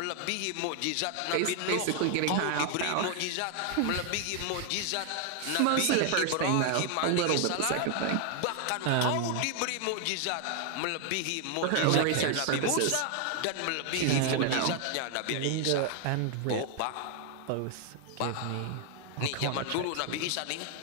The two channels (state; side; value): different; both; correlation 0.00